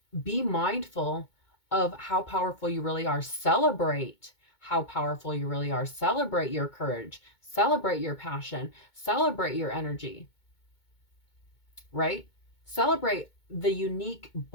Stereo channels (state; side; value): late; right; 2.2 ms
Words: be mindful of how powerful you really are. Celebrate how powerful you really are. Celebrate your courage. Celebrate your passion. Celebrate your energy. Right? Celebrate the unique